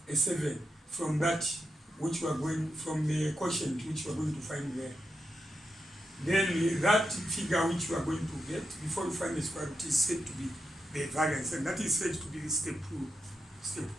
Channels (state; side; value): normal; both; correlation 0.87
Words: a 7 from that which we are going, from the quotient which we are going to find there. Then that figure which you are going to get before you find the square root is said to be the variance, and that is said to be step